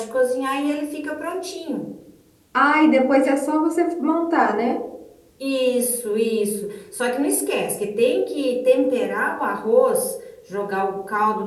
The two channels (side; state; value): both; identical; correlation 1.00